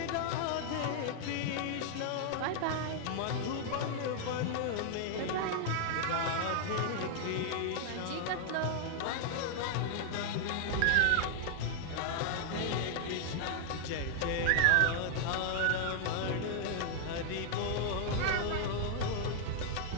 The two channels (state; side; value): different; both; correlation 0.00